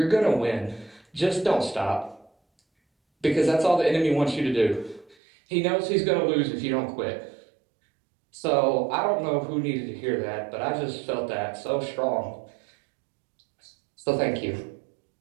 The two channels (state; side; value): drops out; left; at 5.2 s